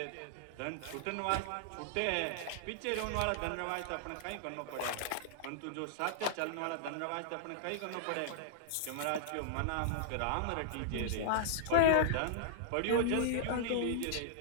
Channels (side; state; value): both; different; correlation -0.01